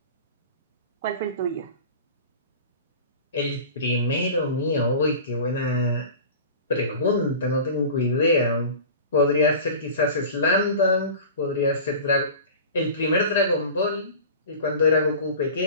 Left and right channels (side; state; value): both; inverted; correlation -0.36